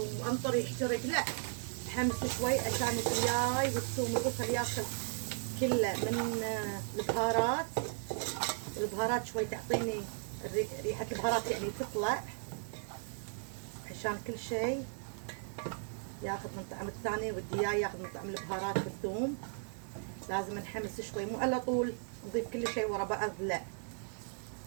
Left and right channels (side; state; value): left; silent; 54 dB below the other